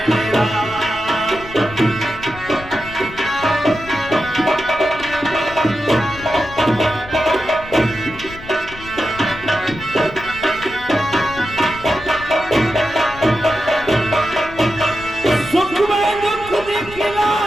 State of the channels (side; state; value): left; noise; rumble, 16 dB below the sound